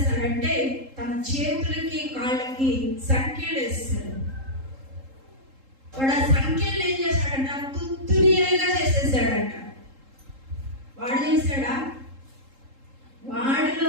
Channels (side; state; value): left; late; 3.7 ms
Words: తన చేతులకి కాళ్ళకి సంఖ్యలు వేస్తారు. వాడు ఆ సంఖ్యలు ఏం చేశాడంట? తుత్తునీలుగా చేసేసాడంట. వాడు చేశాడా? వాడిలో